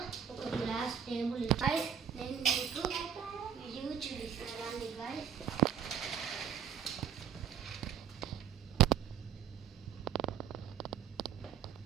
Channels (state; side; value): quieter; left; 8.4 dB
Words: ఒక గ్లాస్ టేబుల్. గైస్ నేను మీకు వ్యూ చూపిస్తానండి గైస్.